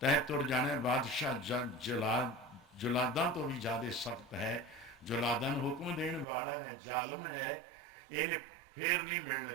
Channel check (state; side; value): drops out; left; at 6.2 s